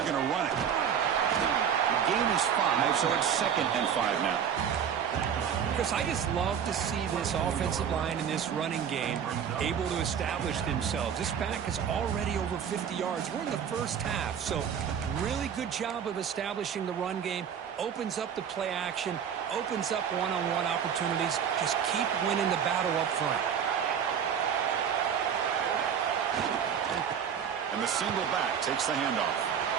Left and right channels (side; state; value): left; quieter; 8.0 dB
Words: going to run it. The game is 5, so it's 2nd and 5 now. Chris, I just love to see this offensive line in this running game able to establish themselves. This back is already over 50 yards. We're in the first half, so really good job of establishing the run game. Opens up the play action, opens up one-on-one opportunities. Just keep winning the battle up front. And the single back takes the handoff.